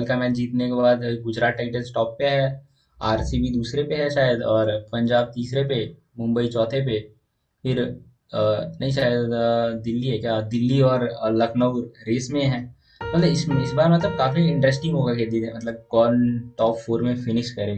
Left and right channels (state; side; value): identical; both; correlation 1.00